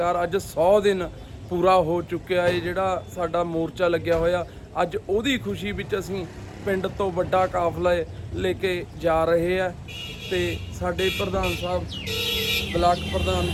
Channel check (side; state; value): both; identical; correlation 1.00